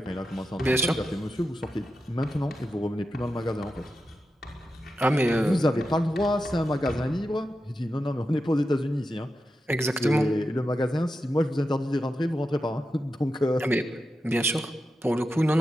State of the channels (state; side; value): normal; both; correlation 0.89